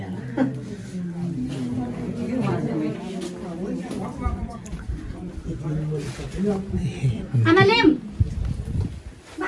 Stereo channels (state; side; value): identical; both; correlation 1.00